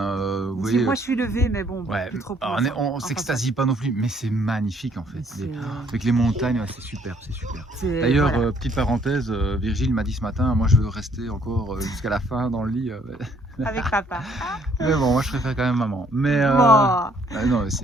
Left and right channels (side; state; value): both; normal; correlation 0.65